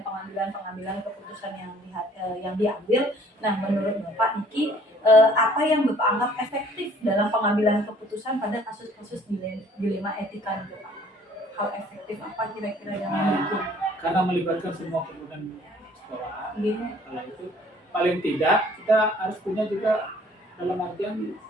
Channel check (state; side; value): normal; both; correlation 0.56